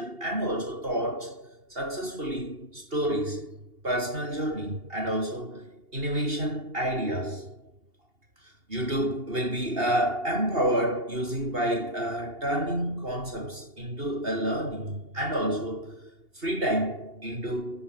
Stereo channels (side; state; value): left; late; 2.8 ms